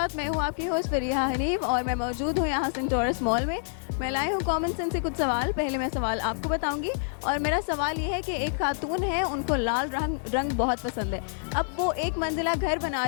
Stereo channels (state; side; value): silent; right; digital silence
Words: मैं हूँ आपकी होस्ट फरीहा हनीफ और मैं मौजूद हूँ यहाँ सेंटोरस मॉल में। मैं लाई हूँ कॉमन सेंस से कुछ सवाल। पहले मैं सवाल आपको बताऊंगी और मेरा सवाल ये है कि एक खातून है, उनको लाल रंग बहुत पसंद है। अब वो एक मंजिला घर बना